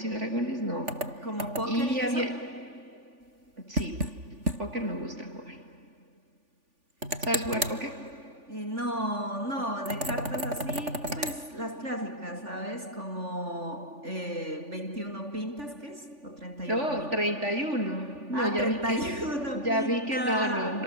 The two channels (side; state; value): left; late; 3.5 ms